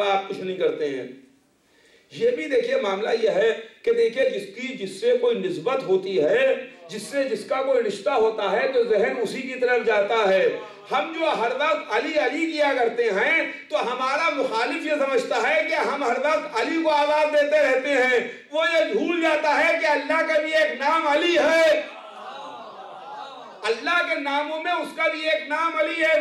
आप कुछ नहीं करते हैं। ये भी देखिए मामला यह है कि देखिए जिसकी जिससे कोई निस्बत होती है, जिससे जिसका कोई रिश्ता होता है तो जहन उसी की तरफ जाता है। हम जो हर वक्त अली अली किया करते हैं तो हमारा मुखालिफ ये समझता है कि हम हर वक्त अली को आवाज देते रहते हैं। वो ये भूल जाता है कि अल्लाह का भी एक नाम अली है, अल्लाह के नामों में उसका भी एक नाम अली है,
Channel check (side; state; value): both; identical; correlation 1.00